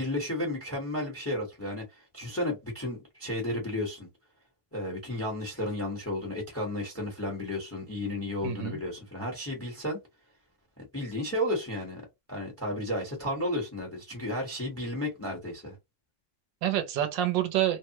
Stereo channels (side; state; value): both; normal; correlation -0.03